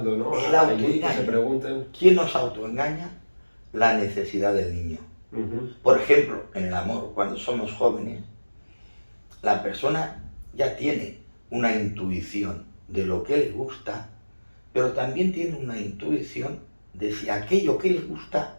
no? El Allí que se autoengaño. pregunten. ¿Quién nos autoengaña? La necesidad del niño. Por ejemplo, en el amor, cuando somos jóvenes, la persona ya tiene una intuición de lo que le gusta, pero también tiene una intuición de si aquello que le gusta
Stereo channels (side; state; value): both; inverted; correlation -1.00